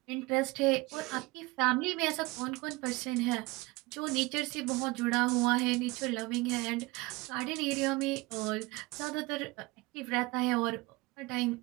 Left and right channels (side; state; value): left; quieter; 23.0 dB